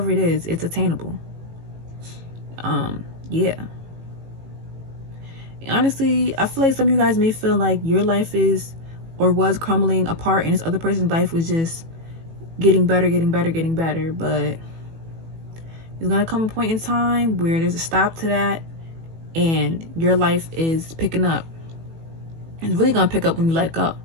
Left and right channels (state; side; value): late; left; 18 ms